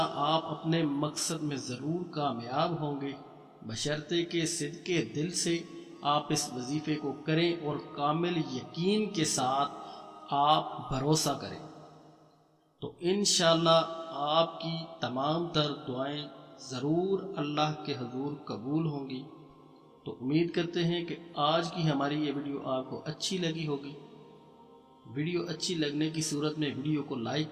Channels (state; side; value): identical; both; correlation 1.00